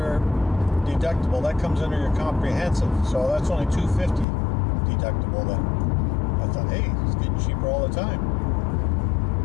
deductible. That comes under your comprehensive. So that's only $250 deductible then. I thought, hey, it's getting cheaper all the time.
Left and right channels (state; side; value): drops out; right; at 4.2 s